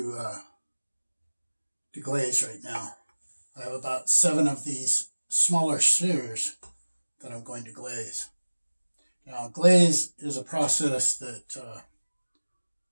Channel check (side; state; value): both; inverted; correlation -1.00